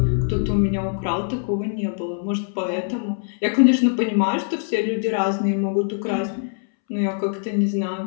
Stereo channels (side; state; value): right; silent; 64 dB below the other